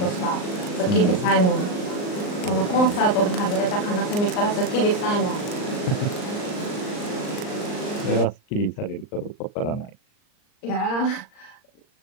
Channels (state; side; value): late; right; 39 ms